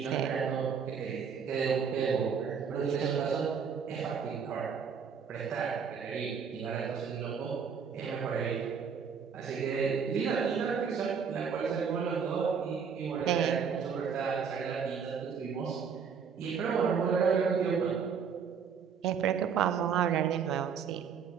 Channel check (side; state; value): left; quieter; 6.6 dB